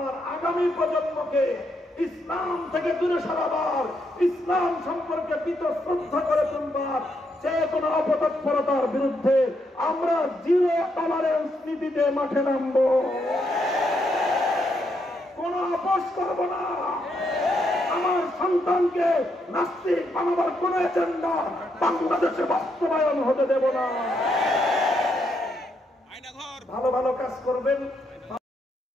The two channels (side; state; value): both; normal; correlation 0.78